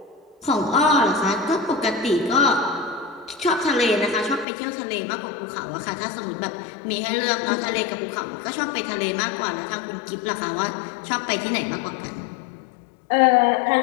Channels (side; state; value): right; drops out; at 4.5 s